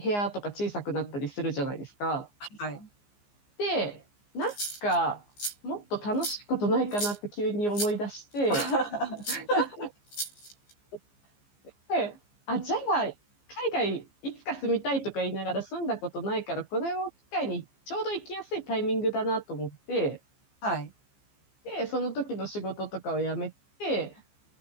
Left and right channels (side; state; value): right; late; 15 ms